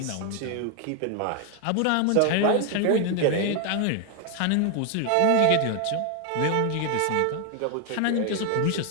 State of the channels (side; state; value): both; different; correlation 0.01